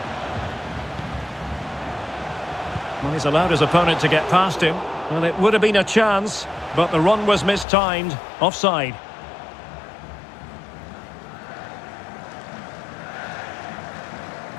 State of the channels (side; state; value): right; drops out; at 7.7 s